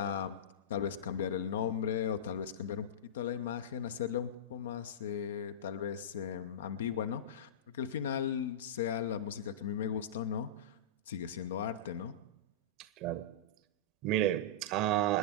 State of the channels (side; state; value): both; normal; correlation -0.16